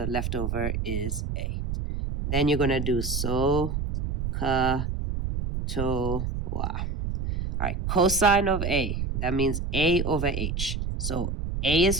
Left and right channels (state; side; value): noise; right; rumble, 3 dB below the sound